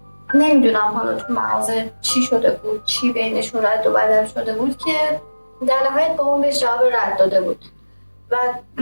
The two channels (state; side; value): inverted; both; correlation -1.00